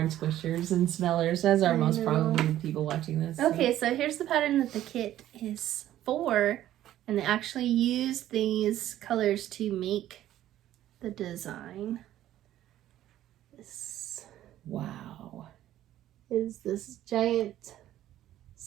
squishers and smellers, as are most probably the people watching this. Okay, so here's the pattern that the kit is for, and they actually use these colors to make the design. This Wow. is this giant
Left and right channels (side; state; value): left; quieter; 12.9 dB